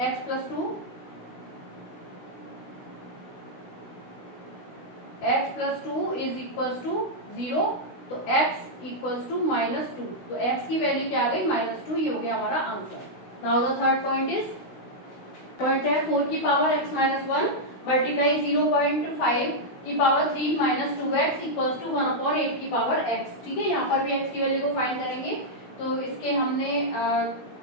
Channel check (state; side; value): late; right; 16 ms